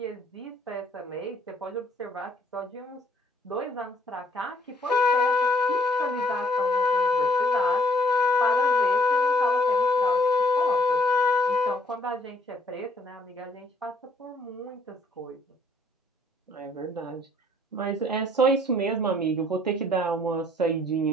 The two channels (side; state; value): both; normal; correlation 0.63